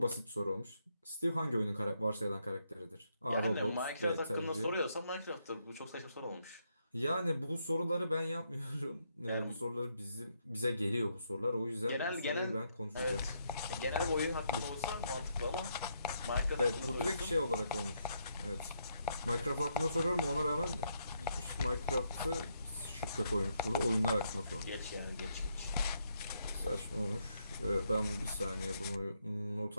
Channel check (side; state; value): both; inverted; correlation -0.77